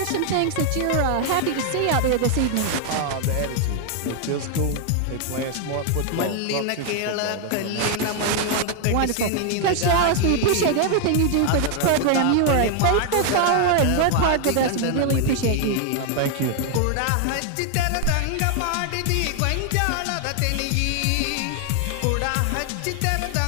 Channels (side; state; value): both; different; correlation 0.00